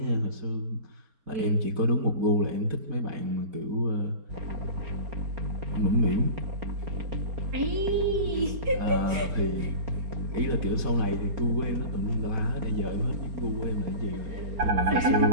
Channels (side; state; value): left; late; 4.4 ms